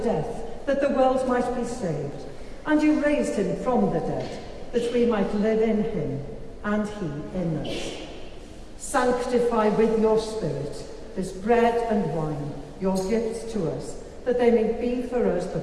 that the world might be saved, and you raised him from the dead that we might live in him and he in us. Sanctify with your Spirit this bread and wine, your gifts to us, that they may be for us the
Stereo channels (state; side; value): identical; both; correlation 1.00